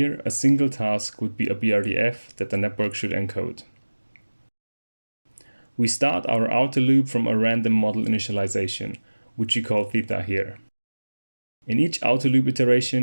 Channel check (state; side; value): inverted; both; correlation -1.00